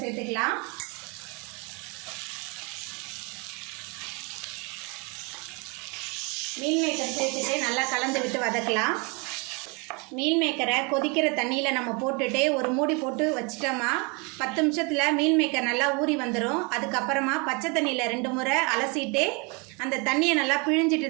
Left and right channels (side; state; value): left; quieter; 31.0 dB